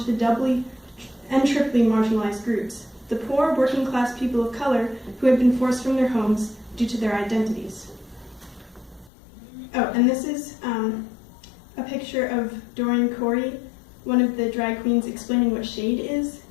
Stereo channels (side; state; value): right; drops out; at 9.1 s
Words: the doubly and triply marginalized groups, the poor working-class people of color who had been forced from their homes due to their identities. Oh, and this is a picture of Doreen Corey, one of the drag queens, explaining what shade is,